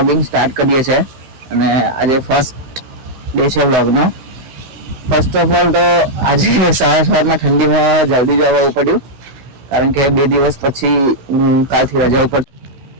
સ્ટાર્ટ કરીએ છીએ અને આજે ફર્સ્ટ ડે છે વ્લોગનો. ફર્સ્ટ ઓફ ઓલ તો આજે સવારમાં ઠંડીમાં જલ્દી જ આવવું પડ્યું, કારણ કે 2 દિવસ પછી હું કાલથી રજા ઉપર.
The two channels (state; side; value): late; left; 15 ms